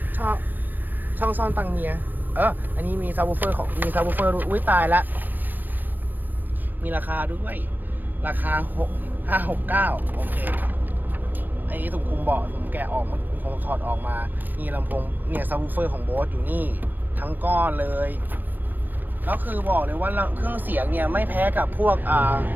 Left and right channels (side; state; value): left; late; 0.087 ms